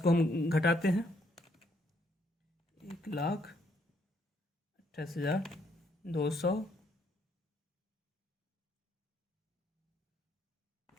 हम घटाते हैं, 1,28,200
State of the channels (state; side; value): normal; both; correlation 0.71